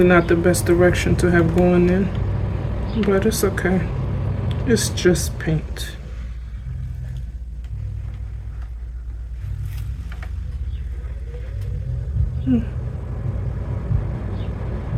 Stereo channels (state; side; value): identical; both; correlation 1.00